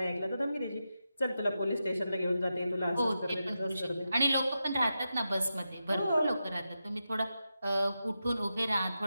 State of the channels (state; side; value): inverted; both; correlation -0.89